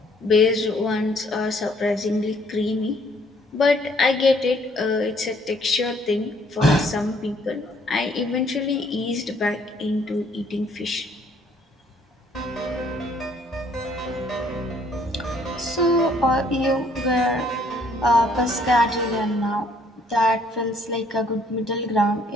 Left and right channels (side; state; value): both; normal; correlation 0.63